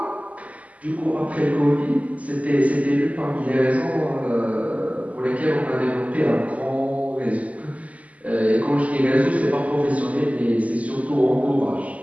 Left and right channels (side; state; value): left; late; 0.071 ms